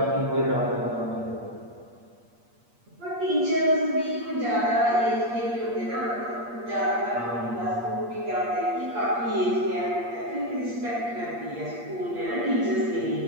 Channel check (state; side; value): late; left; 8.5 ms